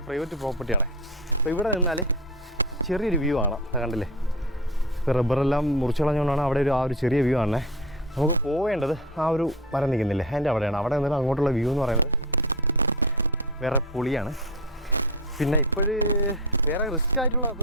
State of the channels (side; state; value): both; normal; correlation 0.25